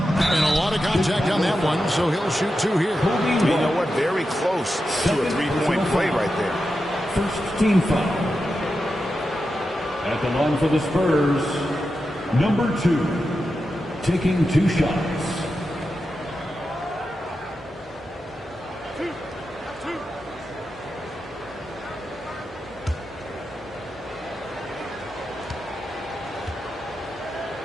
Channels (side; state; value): both; normal; correlation 0.89